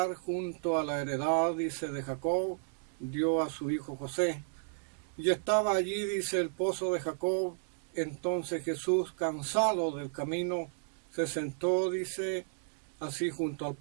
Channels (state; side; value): silent; left; digital silence